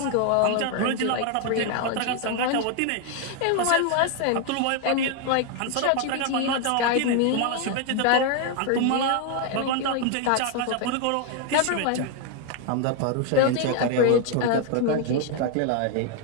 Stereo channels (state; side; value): different; both; correlation 0.01